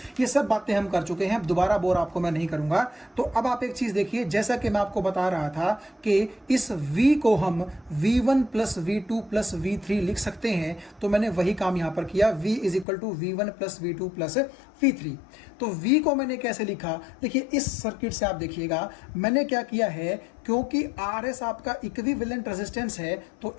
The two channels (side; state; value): right; drops out; at 12.9 s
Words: ये सब बातें हम कर चुके हैं। दोबारा बोर आपको मैं नहीं करूँगा। तो अब आप एक चीज़ देखिए, जैसा कि मैं आपको बता रहा था कि इस V को हम V1 plus V2 plus V3 लिख सकते हैं, तो मैंने वही काम यहाँ पर किया। V is equal to V1 plus V2 plus V3। तो V को मैंने कैसे लिखा, देखिए इस सर्किट से आप देखिएगा मैंने क्या किया है, क्योंकि RS आपका इक्विवेलेंट रेजिस्टेंस है तो